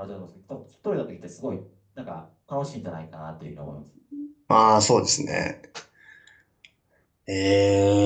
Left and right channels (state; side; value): identical; both; correlation 1.00